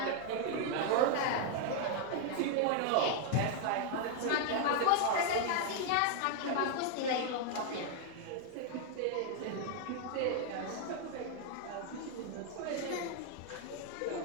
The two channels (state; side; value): different; both; correlation 0.00